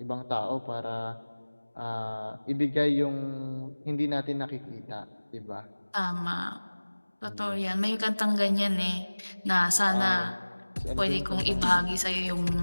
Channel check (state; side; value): inverted; both; correlation -1.00